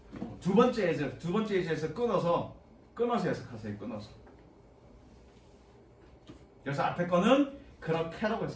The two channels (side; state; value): both; identical; correlation 1.00